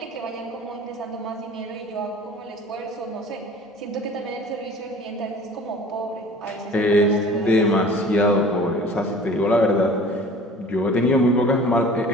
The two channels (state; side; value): normal; both; correlation 0.45